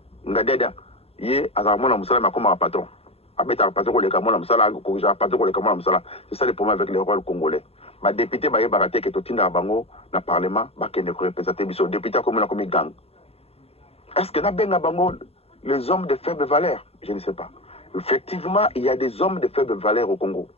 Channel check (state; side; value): late; right; 0.29 ms